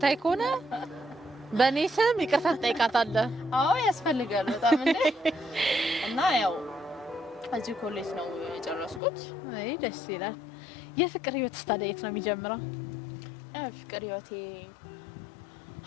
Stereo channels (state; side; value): drops out; right; at 9.0 s